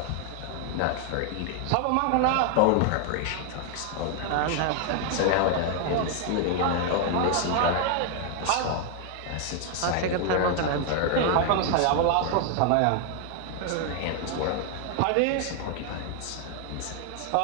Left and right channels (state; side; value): different; both; correlation 0.00